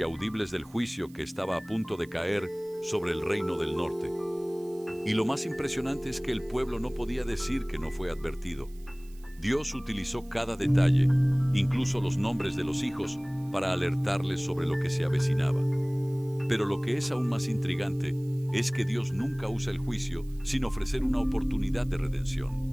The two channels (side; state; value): right; noise; hiss, 26 dB below the sound